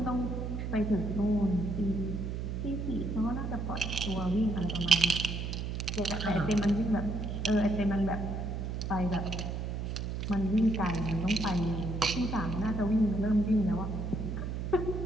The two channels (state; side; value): noise; right; hum, 3 dB below the sound